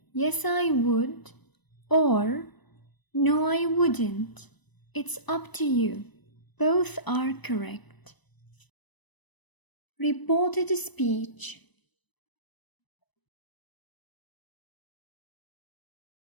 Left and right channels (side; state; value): right; late; 1.0 ms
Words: yes I would, or no I wouldn't. It's up to you. Both are correct. Reported speech.